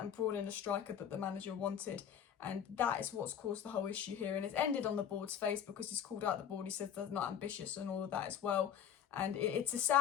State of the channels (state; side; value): quieter; right; 9.0 dB